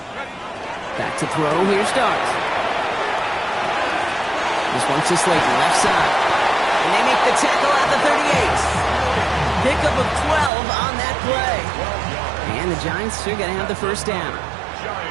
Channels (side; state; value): left; drops out; at 10.5 s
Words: Back to throw. Here's Dart. This one's to Slayton, left side. And they make the tackle at the 38. Pickup of 12 on that play. And the Giants are going to have the first down.